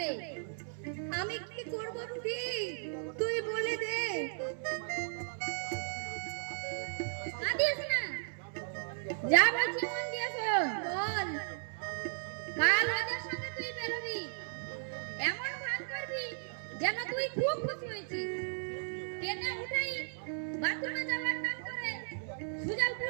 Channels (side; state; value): left; silent; digital silence